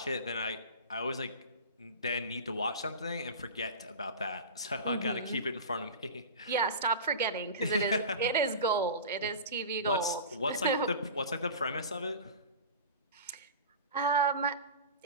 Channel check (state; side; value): inverted; both; correlation -0.31